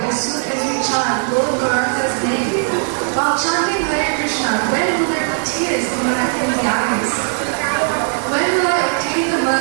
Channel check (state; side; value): silent; left; 67 dB below the other